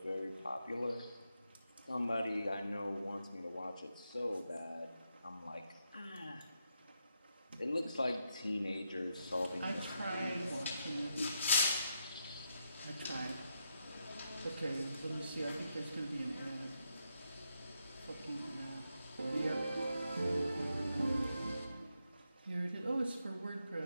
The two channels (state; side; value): inverted; both; correlation -0.83